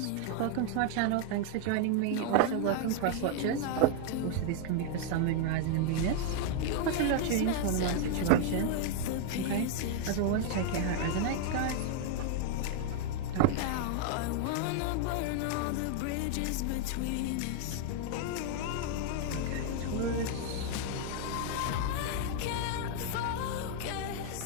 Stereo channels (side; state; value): both; different; correlation 0.00